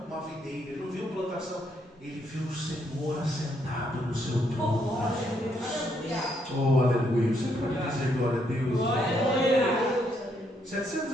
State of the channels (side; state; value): both; normal; correlation 0.74